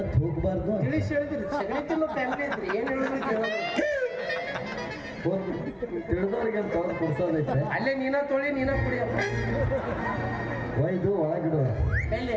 ಹೋಗ್ಬಾರ್ದು ತಿಳಿಸಿ ಹೇಳಿದ್ರಿ ಸಗಣಿತಿನ್ನು ಫ್ಯಾಮಿಲಿ ಐತ್ರಿ ಏನ್ ಹೇಳಿದ್ರಿ ತಿಳಿದವ್ರಿಗೆ ಅಂತ ಅವ್ರು ಕೊಡ್ಸೋದೈತೆ ಅಲ್ಲೇ ನೀನ ತೊಳಿ ನೀನ ಕುಡಿಯಪ್ಪ ಒಯ್ದು ಒಳಗಿಡುವ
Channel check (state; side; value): identical; both; correlation 1.00